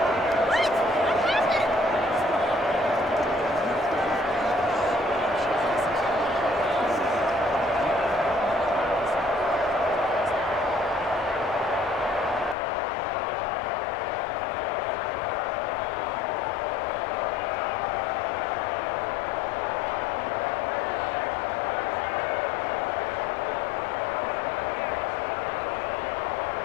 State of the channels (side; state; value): right; drops out; at 12.6 s